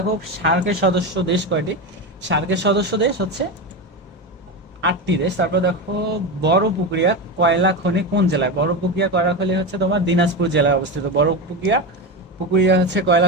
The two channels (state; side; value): normal; both; correlation 0.18